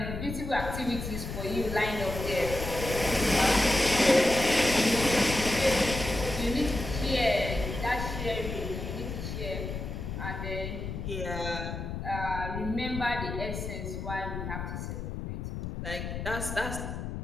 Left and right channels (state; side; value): noise; left; rumble, 6 dB below the sound